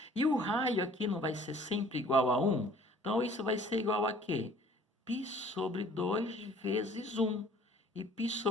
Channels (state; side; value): normal; both; correlation 0.54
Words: E o raio aqui não vai ser sempre igual a 1? Então, isso vai ser igual a quê? π sobre 2 vezes 1. E π